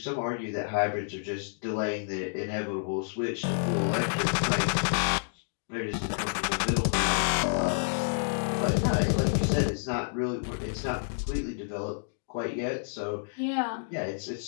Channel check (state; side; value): silent; right; digital silence